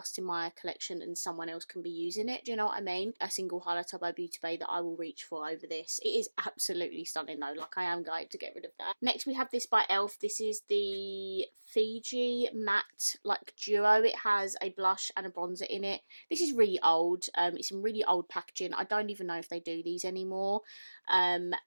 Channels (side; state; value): both; inverted; correlation -1.00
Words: in my collection and someone else can be using it. Do you know what I mean? A single highlighter by Beauty Bay that I will reach for over this. It is absolutely stunning though. Like, I am going to get rid of that. Next we have this by ELF. This is the Fiji Matte like duo. It has a blush and a bronzer in it. This is really old. It's in really old packaging. I don't even know if they do these anymore. And